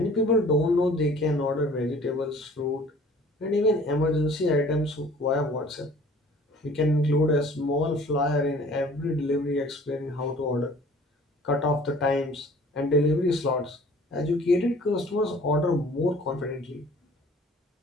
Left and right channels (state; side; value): normal; both; correlation 0.50